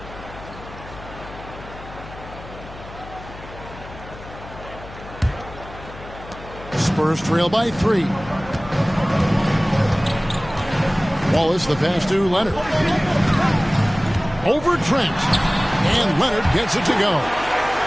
Spurs trail by 3. Wallace, the pass to Leonard. Over Trent. And Leonard gets it to go.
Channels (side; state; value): left; noise; hum, 16 dB below the sound